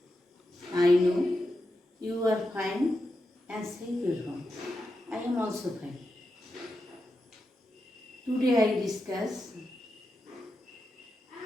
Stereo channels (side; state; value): both; normal; correlation 0.88